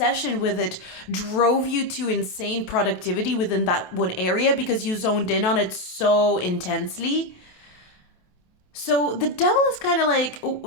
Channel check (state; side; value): late; right; 28 ms